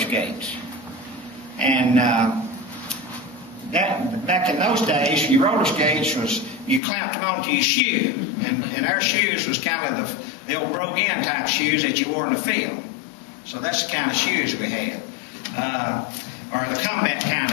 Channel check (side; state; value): right; drops out; at 6.8 s